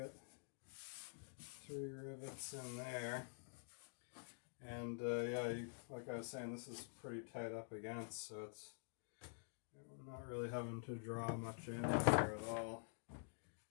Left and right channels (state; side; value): silent; right; digital silence